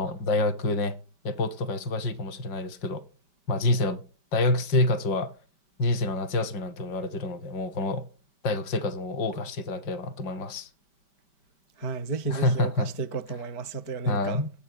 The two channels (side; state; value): right; late; 5.1 ms